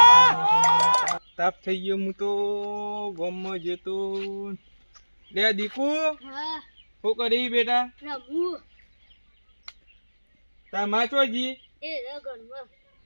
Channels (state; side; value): inverted; both; correlation -1.00